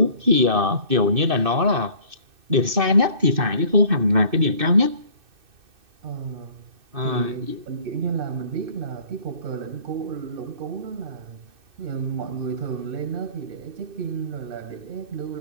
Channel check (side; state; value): left; late; 2.6 ms